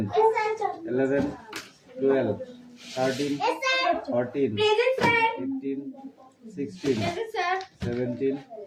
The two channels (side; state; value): both; identical; correlation 1.00